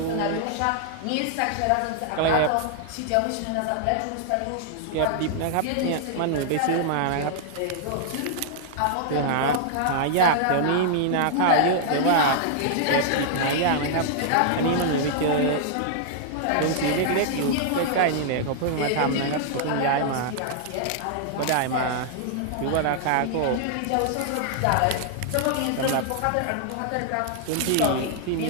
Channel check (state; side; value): different; both; correlation -0.01